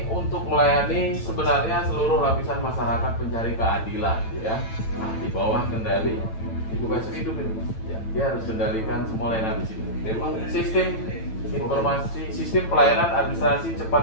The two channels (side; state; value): right; late; 9.0 ms